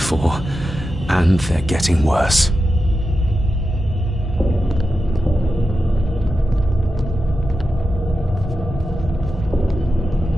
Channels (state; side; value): normal; both; correlation 0.90